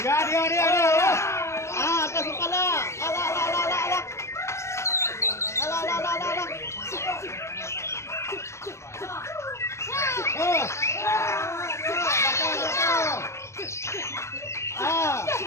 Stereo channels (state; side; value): late; right; 0.13 ms